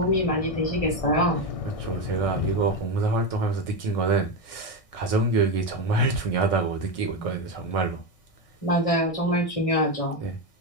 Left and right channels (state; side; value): late; right; 1.6 ms